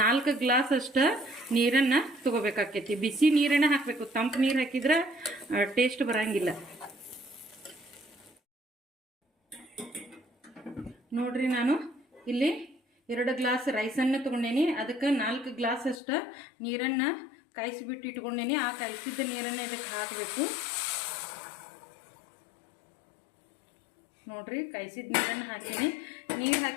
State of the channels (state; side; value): drops out; right; at 16.0 s